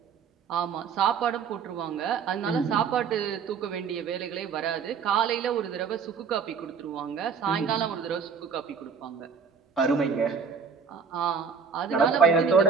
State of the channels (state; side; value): quieter; left; 6.0 dB